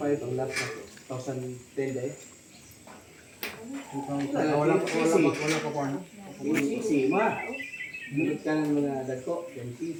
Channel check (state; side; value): identical; both; correlation 1.00